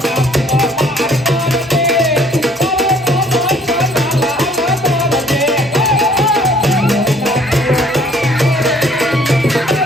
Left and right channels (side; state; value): both; normal; correlation 0.58